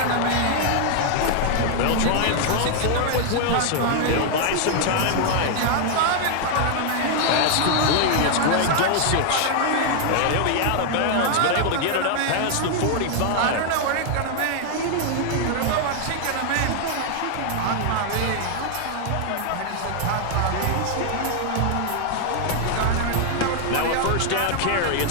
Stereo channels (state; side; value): different; both; correlation 0.00